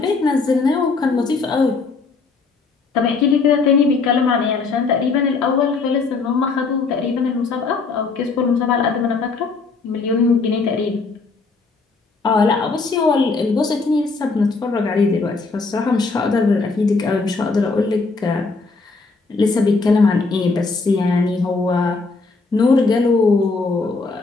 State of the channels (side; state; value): right; quieter; 4.2 dB